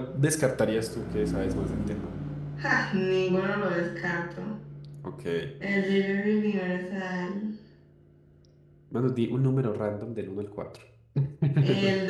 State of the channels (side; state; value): both; identical; correlation 1.00